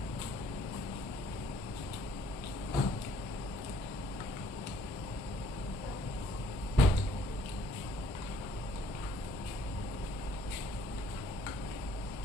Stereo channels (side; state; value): both; normal; correlation 0.62